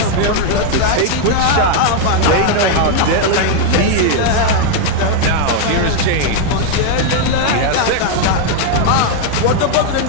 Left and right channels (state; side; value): different; both; correlation 0.00